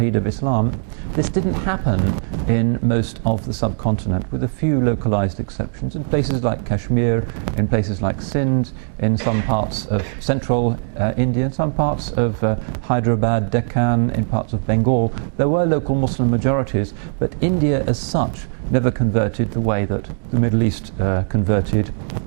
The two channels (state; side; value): silent; left; digital silence